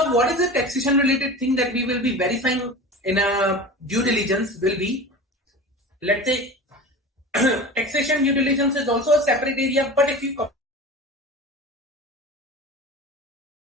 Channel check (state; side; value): normal; both; correlation 0.33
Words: what is the taxation related thing that we will be verifying in a due diligence will be, let's say, taxation due diligence is also a separate area, but if you